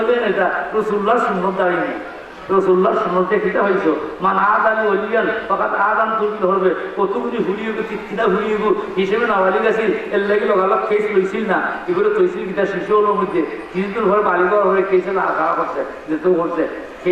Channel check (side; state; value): both; identical; correlation 1.00